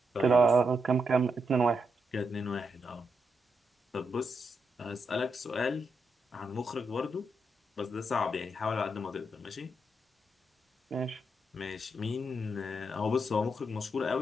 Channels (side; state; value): both; normal; correlation 0.82